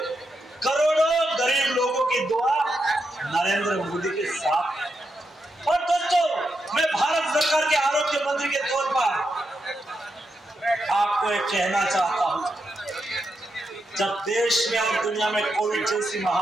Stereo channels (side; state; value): both; normal; correlation 0.84